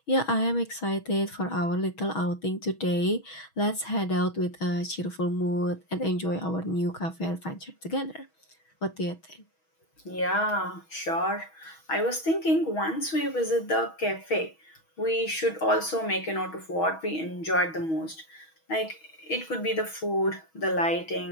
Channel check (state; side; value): late; right; 6.2 ms